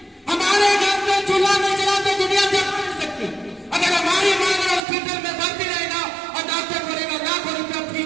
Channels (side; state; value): left; drops out; at 4.8 s